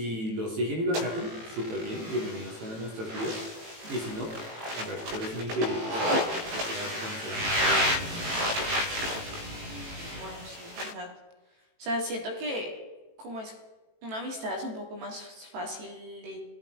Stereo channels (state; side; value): late; left; 18 ms